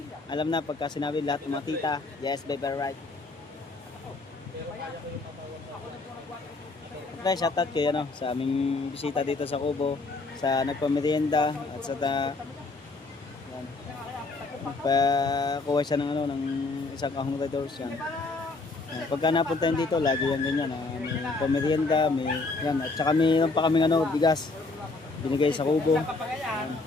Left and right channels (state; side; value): quieter; right; 3.5 dB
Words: Alam na pagka sinabi lahat ng mga tita. Yes, baby, right. Okay, shoutout kayo sa aming bisita dito sa Kubo. Sa nagpamerienda at sa yan. Nagpakuha siya ng isang kahong Red Doors yan. Pagka napuntahin dito, lagi yan ganyan. May pamerienda, may yan. At saka may pa kaming bigas. Binigay sa Kubo. Yan.